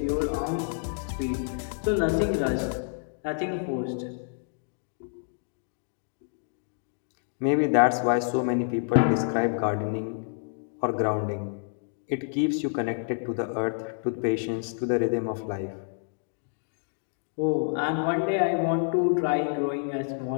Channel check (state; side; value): silent; right; digital silence